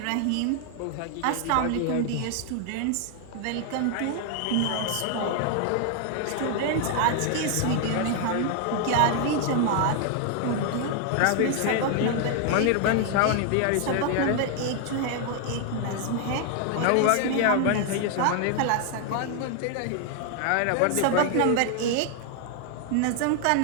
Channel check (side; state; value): both; different; correlation 0.00